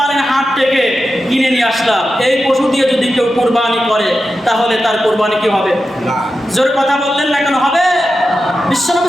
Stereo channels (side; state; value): both; normal; correlation 0.91